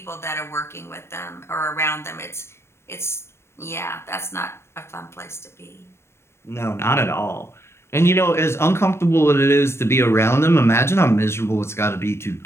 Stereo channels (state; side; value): late; right; 0.12 ms